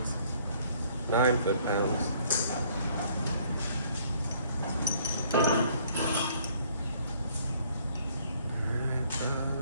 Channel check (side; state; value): both; inverted; correlation -0.61